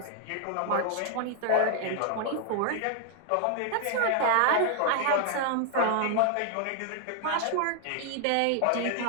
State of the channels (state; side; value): different; both; correlation 0.00